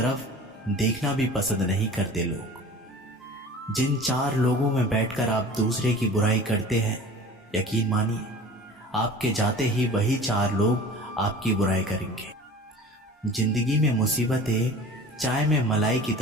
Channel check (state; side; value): normal; both; correlation 0.41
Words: देखना भी पसंद नहीं करते लोग। जिन 4 लोगों में बैठकर आप दूसरे की बुराई करते हैं, यकीन मानिए आपके जाते ही वही 4 लोग आपकी बुराई करेंगे। जिंदगी में मुसीबतें चाय में मलाई की